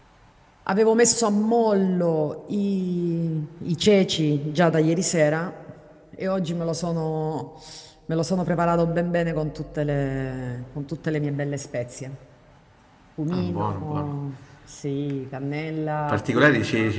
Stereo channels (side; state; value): both; identical; correlation 1.00